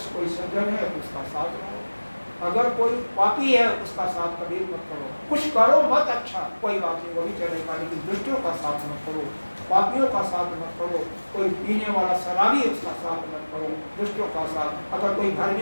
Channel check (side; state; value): both; inverted; correlation -1.00